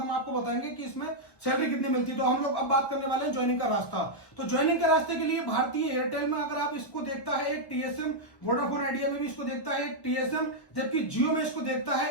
आपको बताएंगे कि इसमें सैलरी कितनी मिलती है। तो हम लोग अब बात करने वाले हैं ज्वाइनिंग का रास्ता। तो ज्वाइनिंग के रास्ते के लिए भारतीय एयरटेल में अगर आप इसको देखता है एक टीएसएम, वोडाफोन आइडिया में भी इसको देखता है एक टीएसएम, जबकि जियो में इसको देखता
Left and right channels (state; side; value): late; right; 1.1 ms